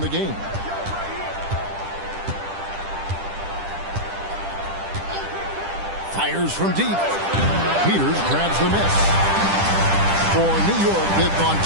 the game. Fires from deep. Peters grabs the miss. For New York, they've gone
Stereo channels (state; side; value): late; left; 10 ms